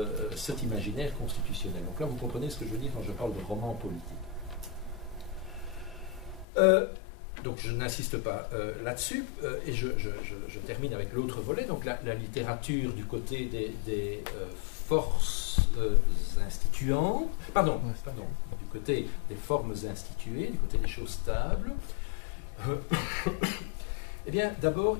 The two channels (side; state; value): right; drops out; at 6.5 s